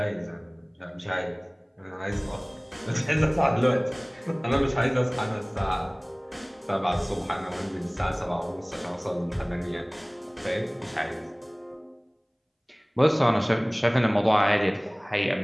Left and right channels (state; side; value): identical; both; correlation 1.00